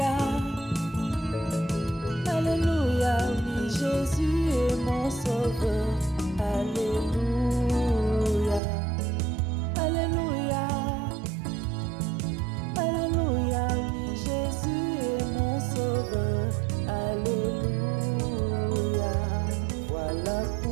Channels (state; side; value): drops out; left; at 8.6 s